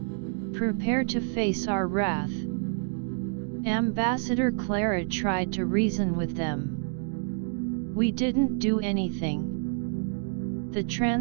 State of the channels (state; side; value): silent; left; 59 dB below the other